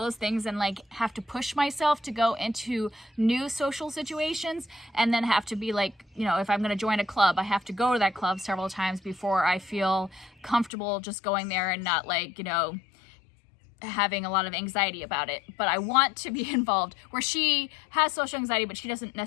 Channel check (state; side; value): drops out; right; at 10.7 s